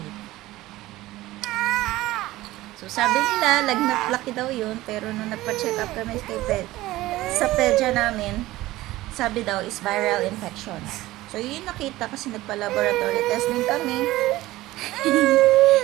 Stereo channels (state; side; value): quieter; left; 17.3 dB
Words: So, sabi nila, lagnat laki daw yun. Pero nung nagpa-check up kami sa pedya namin, sabi daw is viral infection. So, yun nakita kasi nagpa-laboratory testing kami.